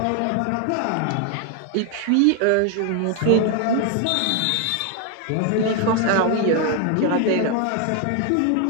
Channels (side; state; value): both; different; correlation 0.00